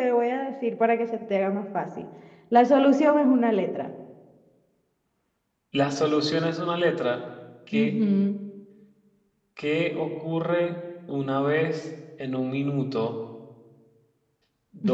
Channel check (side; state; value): both; identical; correlation 1.00